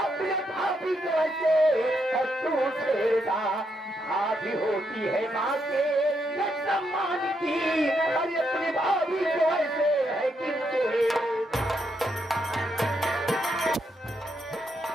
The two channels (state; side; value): normal; both; correlation 0.79